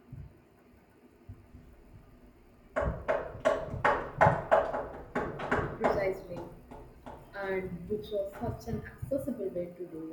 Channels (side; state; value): both; identical; correlation 1.00